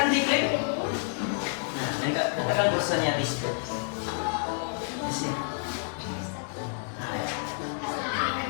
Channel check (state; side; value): silent; right; 59 dB below the other